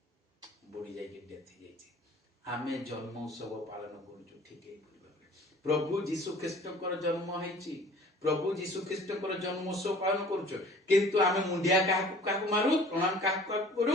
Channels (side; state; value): both; normal; correlation 0.49